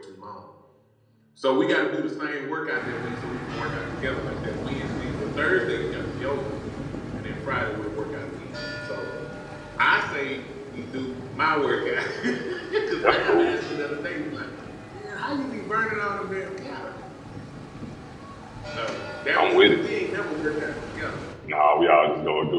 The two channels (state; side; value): identical; both; correlation 1.00